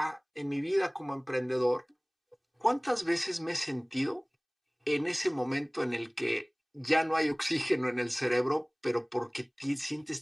en mi vida como emprendedor, ¿cuántas veces me he sentido en ese momento en el que ya no hay oxígeno en el cerebro, pero porque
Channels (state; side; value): identical; both; correlation 1.00